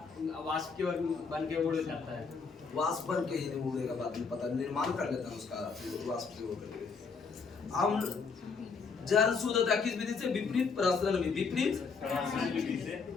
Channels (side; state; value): right; quieter; 5.1 dB